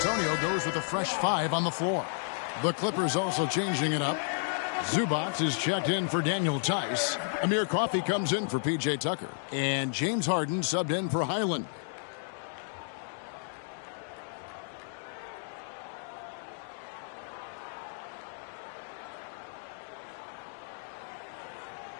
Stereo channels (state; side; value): silent; right; digital silence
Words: goes with a fresh 5 on the floor. The Clippers also changing it up. Zubac is checked in for Daniel Tice. Amir Coffey comes in for P.J. Tucker. And James Harden subbed in for Highland.